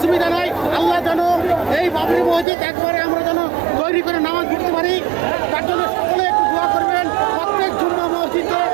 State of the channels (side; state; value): left; drops out; at 2.5 s